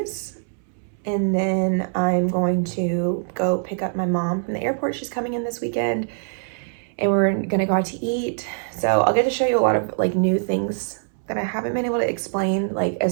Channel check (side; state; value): left; silent; 62 dB below the other